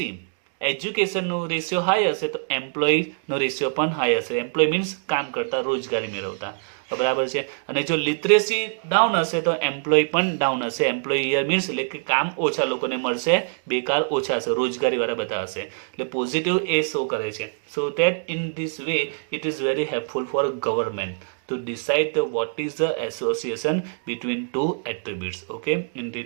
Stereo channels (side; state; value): left; silent; digital silence